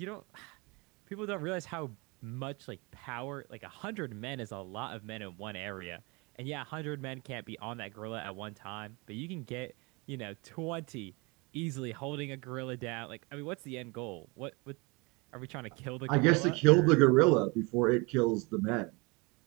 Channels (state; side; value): quieter; left; 27.9 dB